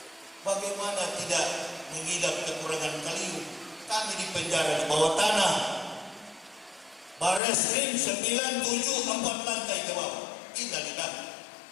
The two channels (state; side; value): drops out; right; at 7.4 s